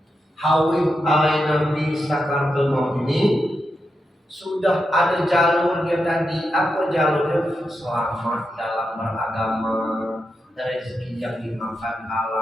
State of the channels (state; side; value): normal; both; correlation 0.86